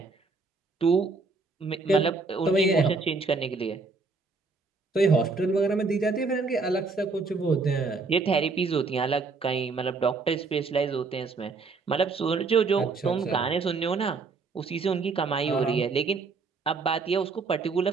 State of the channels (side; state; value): left; quieter; 4.2 dB